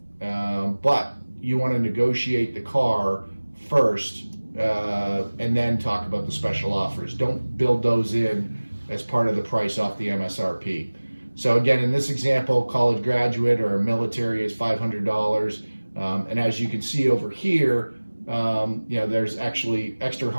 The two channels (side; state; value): both; inverted; correlation -1.00